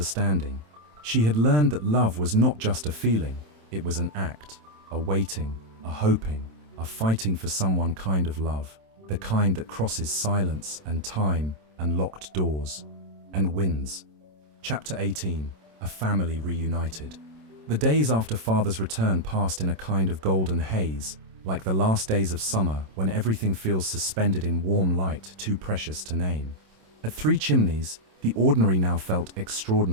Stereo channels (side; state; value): left; late; 27 ms